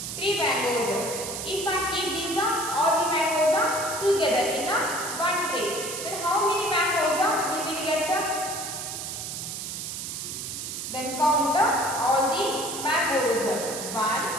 3 mangoes. If I keep these all the mangoes together in one tray, then how many mangoes we will get? Then count all the mangoes. 1,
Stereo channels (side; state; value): right; noise; hiss, 6 dB below the sound